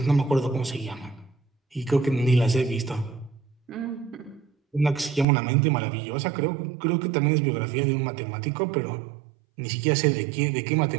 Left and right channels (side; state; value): left; drops out; at 5.2 s